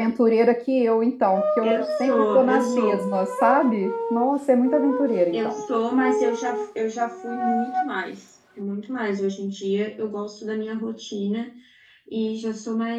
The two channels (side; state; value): both; identical; correlation 1.00